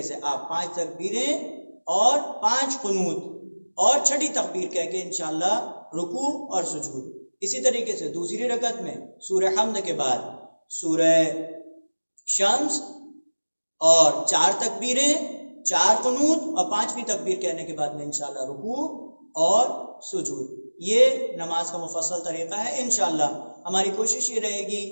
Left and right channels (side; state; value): both; inverted; correlation -1.00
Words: سے آپ 5 تکبیریں اور 5 قنوت اور چھٹی تکبیر کہہ کے انشاءاللہ رکوع اور سجود۔ اسی طریقے سے دوسری رکعت میں سورہ حمد کے بعد سورہ شمس اور 4 تکبیریں، 4 قنوت اور 5ویں تکبیر کہنے کے بعد میں انشاءاللہ رکوع اور سجود۔ یہ نماز کا مفصل طریقہ ہے۔ انشاءاللہ ہماری کوشش یہ رہے گی